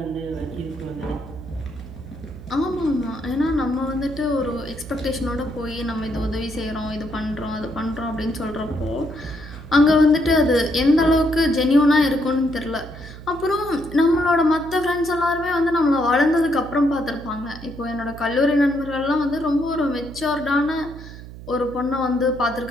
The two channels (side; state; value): right; noise; hum, 14 dB below the sound